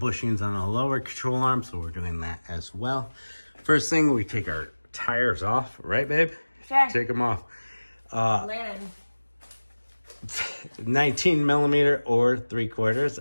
on the lower control arm, so we're doing that as well. First thing, we take our tires off, right, babe? Sure. Take them off. Landon. 19 millimeter or 3/4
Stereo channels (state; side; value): inverted; both; correlation -1.00